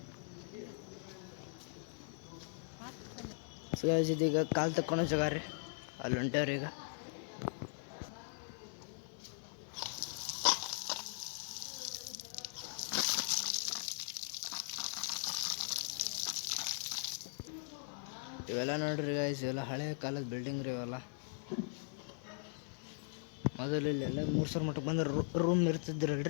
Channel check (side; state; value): right; silent; digital silence